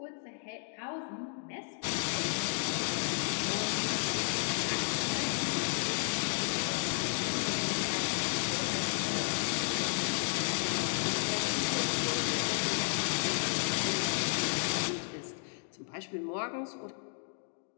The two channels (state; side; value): silent; right; digital silence